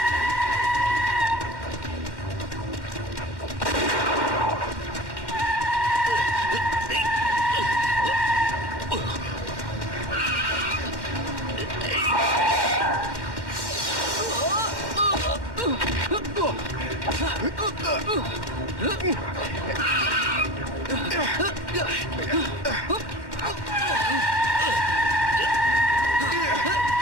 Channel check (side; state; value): left; late; 1.1 ms